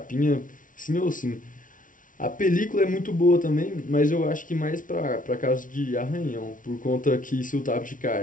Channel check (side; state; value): right; late; 0.38 ms